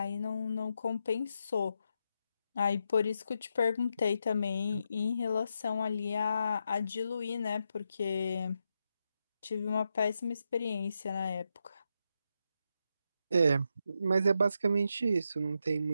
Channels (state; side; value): inverted; both; correlation -0.84